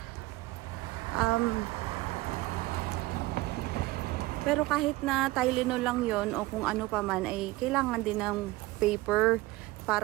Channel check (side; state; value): left; quieter; 19.5 dB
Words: pero kahit na Tylenol lang yon o kung ano pa man, ay kailangan din ng paper